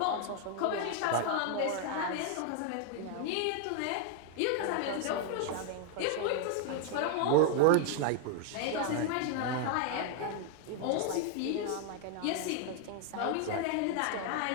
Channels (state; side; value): different; both; correlation 0.00